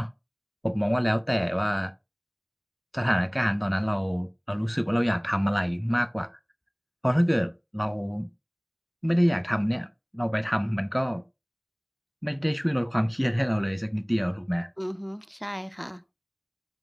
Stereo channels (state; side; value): identical; both; correlation 1.00